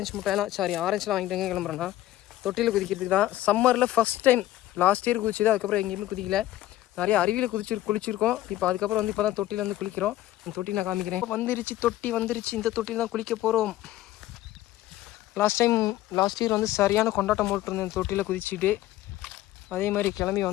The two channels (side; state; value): right; quieter; 14.8 dB